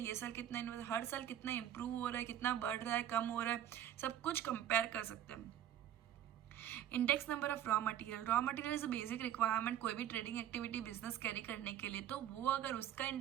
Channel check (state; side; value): quieter; left; 11.1 dB